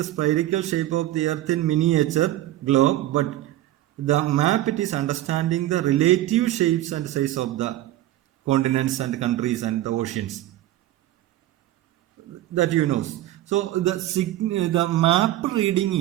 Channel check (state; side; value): quieter; left; 14.5 dB